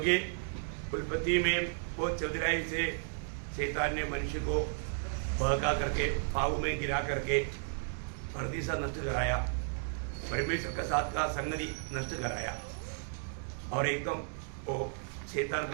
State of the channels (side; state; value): left; silent; digital silence